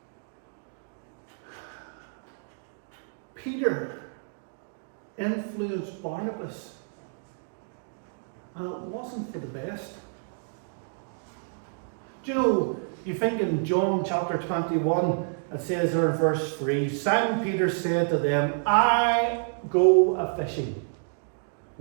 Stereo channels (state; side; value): silent; left; digital silence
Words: Peter influenced Barnabas, and it wasn't for the best. Do you know, you think in John chapter 21, it says there in verse 3, Simon Peter said to them, I go a-fishing.